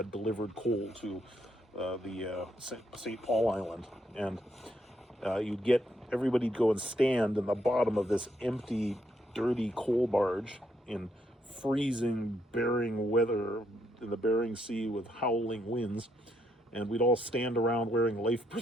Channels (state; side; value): normal; both; correlation 0.75